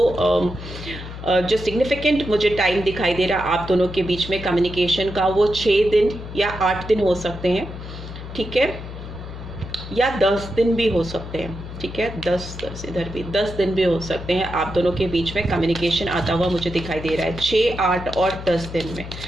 जो सिग्निफिकेंट मुझे टाइम दिखाई दे रहा है आप दोनों के बीच में कम्युनिकेशन का, वो 6 दिन या 8 दिन हो सकते हैं, ठीक है, या 10 दिन भी हो सकते हैं, ठीक है। 10 इधर भी 10 दिन भी हो सकते हैं आप दोनों के बीच में कम्युनिकेशन आता हुआ मुझे दिखाई दे रहा है 6, 8 और 10 दिन में,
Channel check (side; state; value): left; noise; hum, 10 dB below the sound